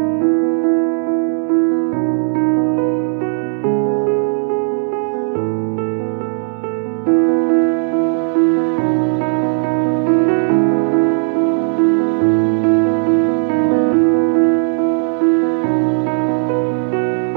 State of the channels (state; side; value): silent; left; 63 dB below the other